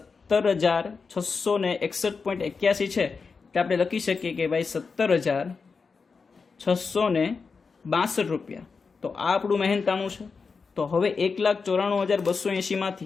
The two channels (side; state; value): right; quieter; 5.0 dB